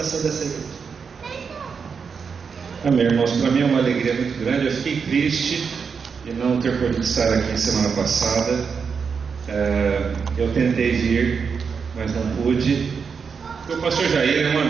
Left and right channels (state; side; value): quieter; left; 5.9 dB